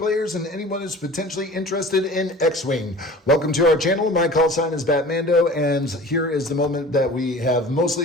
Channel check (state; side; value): normal; both; correlation 0.40